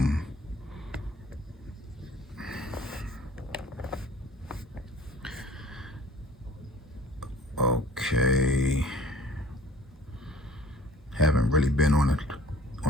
Okay. Haven't really been on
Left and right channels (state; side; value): normal; both; correlation 0.50